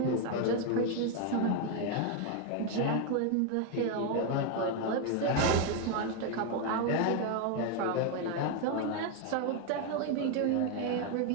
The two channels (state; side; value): different; both; correlation 0.01